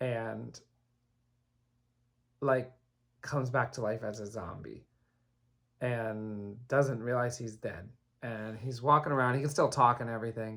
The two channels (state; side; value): identical; both; correlation 1.00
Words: like comes back to life as a zombie and doesn't realize he's dead. And he's walking around, he can still talk and